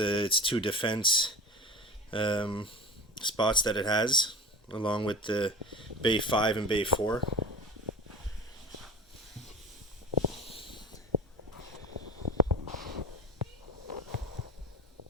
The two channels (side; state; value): both; normal; correlation 0.32